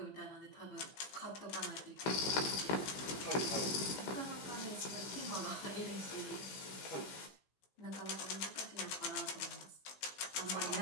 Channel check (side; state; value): right; late; 15 ms